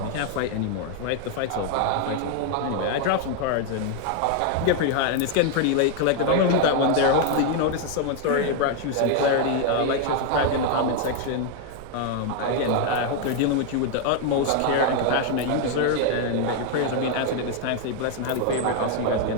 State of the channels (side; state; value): both; different; correlation 0.00